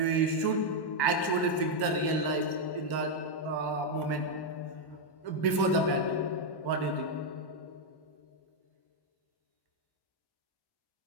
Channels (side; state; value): right; late; 1.1 ms